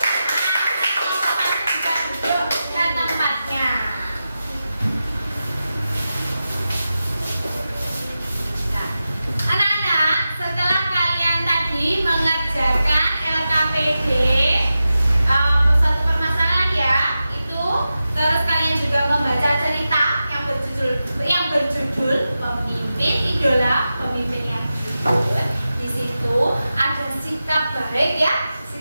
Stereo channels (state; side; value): inverted; both; correlation -0.92